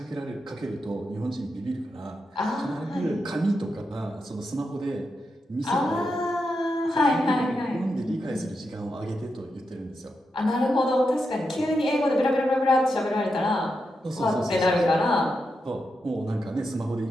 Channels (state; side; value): normal; both; correlation 0.86